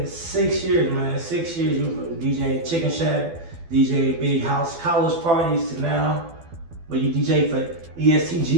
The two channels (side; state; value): left; late; 12 ms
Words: 6 years, man. 6 years you've been DJing Chicken Shack, DJing big house college parties to now. But you DJ for